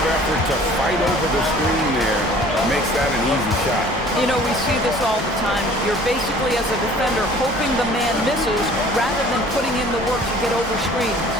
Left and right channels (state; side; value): normal; both; correlation 0.50